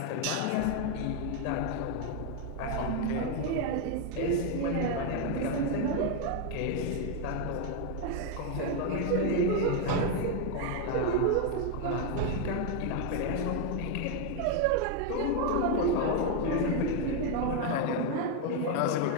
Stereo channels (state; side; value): different; both; correlation 0.01